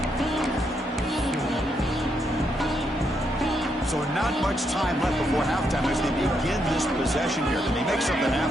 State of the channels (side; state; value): both; normal; correlation 0.79